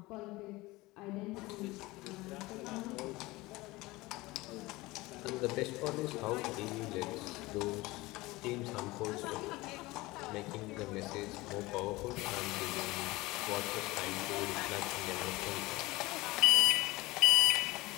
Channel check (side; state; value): right; quieter; 20.8 dB